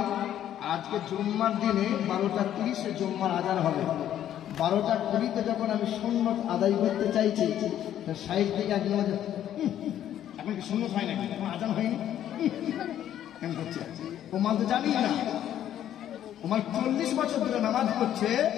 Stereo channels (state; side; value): quieter; right; 11.1 dB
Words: আজকে জুম্মার দিনে 12:30 জুম্মার আজান হবে। 12:20 যখন আমি সুন্নত আদায় করতে চাইছি, সাইড থেকে একজন এখন কি সুন্নত হয় নাকি, এখন আজান হয়নি কেন করছে? ও মাল তো জানি না, ও মাল 40 বছর ধরে নামাজ পড়ছে,